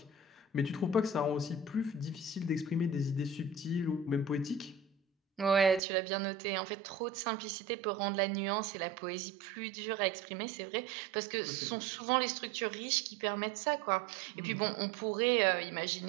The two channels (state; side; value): drops out; left; at 5.8 s